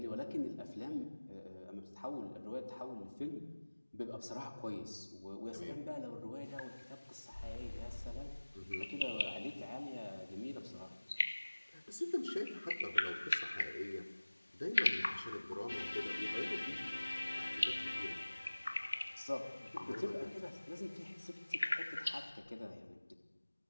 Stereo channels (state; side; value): inverted; both; correlation -1.00